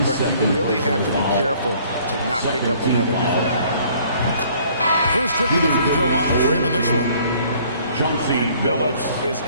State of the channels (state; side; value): inverted; both; correlation -0.58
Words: but you really have to be careful to not pick up another defender. First trip to the free throw line for him in this one. And Billups is